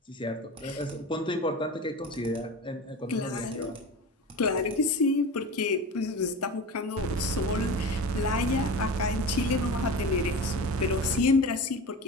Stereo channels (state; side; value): normal; both; correlation 0.31